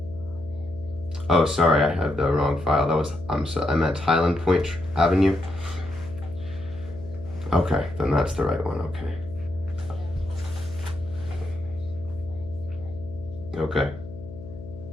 Oh, sorry, I have the wrong file. That was, I'm at Highland Point Avenue. Okay, then that's the right one, okay. Okay.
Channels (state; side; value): noise; left; hum, 13 dB below the sound